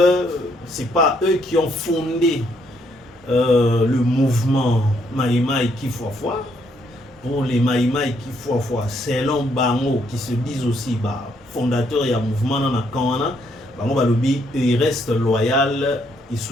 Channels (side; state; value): both; normal; correlation 0.72